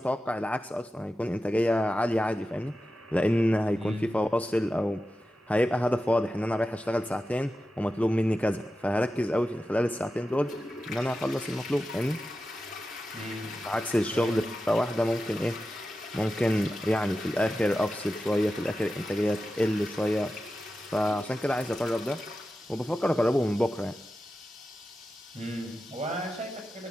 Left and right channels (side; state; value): both; normal; correlation 0.92